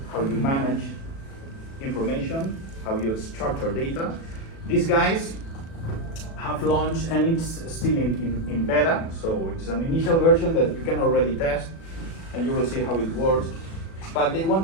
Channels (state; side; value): late; right; 36 ms